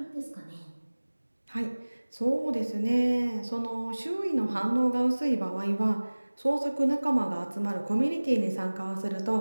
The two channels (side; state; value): both; inverted; correlation -1.00